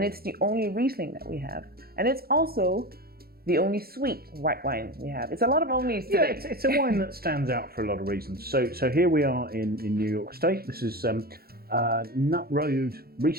it's the only Riesling that we have, and it's also the only sweet white wine we have. It's a lot of onlys today. Yeah, it's a wine that stands out for a lot of reasons. So here we are in New York State. This is Nutt Road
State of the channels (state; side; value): late; left; 0.44 ms